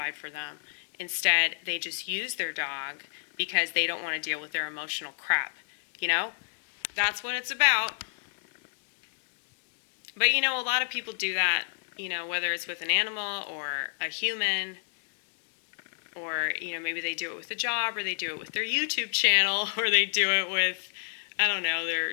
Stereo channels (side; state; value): right; silent; digital silence